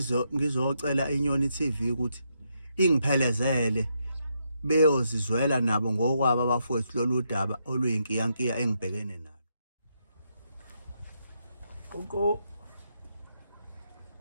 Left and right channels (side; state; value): both; inverted; correlation -0.79